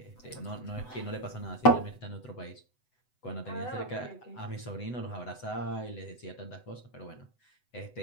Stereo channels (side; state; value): right; late; 8.0 ms